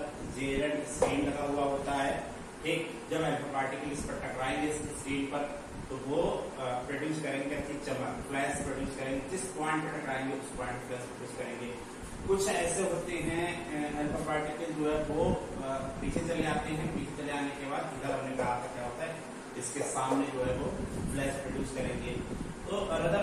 जेरेड स्क्रीन लगा हुआ होता है, ठीक। जब अल्फा पार्टिकल इस पर टकराएंगे स्क्रीन पर तो वो प्रोड्यूस करेंगे अच्छी चमक, फ्लैश प्रोड्यूस करेंगे, जिस पॉइंट पर टकराएंगे उस पॉइंट पर फ्लैश प्रोड्यूस करेंगे। कुछ ऐसे होते हैं अल्फा पार्टिकल जो है वो पीछे चले आते हैं, पीछे चले आने के बाद इधर हमने कहा था क्या होता है, इसके सामने जो है वो फ्लैश प्रोड्यूस करेंगे। तो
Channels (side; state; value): both; identical; correlation 1.00